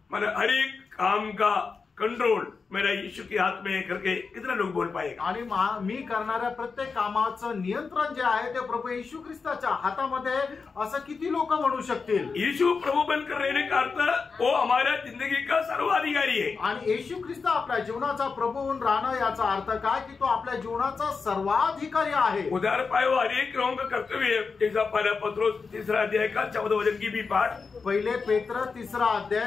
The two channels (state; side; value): quieter; right; 4.9 dB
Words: मतलब हर एक काम का कंट्रोल मेरा यीशु के हाथ में करके कितना लोग बोल पाएगा. आणि मी करणाऱ्या प्रत्येक कामाचं नियंत्रण जे आहे ते प्रभू येशू ख्रिस्ताच्या हातामध्ये असं किती लोक म्हणू शकतील. यीशु प्रभु बनकर रहने का अर्थ वो हमारा जिंदगी का सर्वाधिकारी है. आणि येशू ख्रिस्त आपल्या जीवनाचा प्रभू होऊन राहणं याचा अर्थ काय की तो आपल्या जीवनाचा सर्वाधिकारी आहे. उदार पाए वो हर एक लोगों का कर्तव्य है. जैसा पहला पत्रोस 3 अध्याय का 14 वचन की भी पाठ. पहिले पेत्र 3